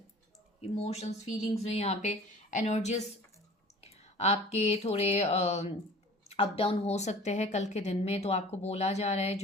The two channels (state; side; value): normal; both; correlation 0.44